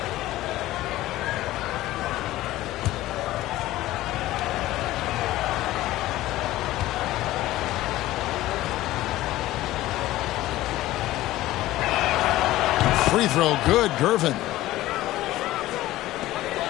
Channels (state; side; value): quieter; right; 16.1 dB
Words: Free throw good, Gervin.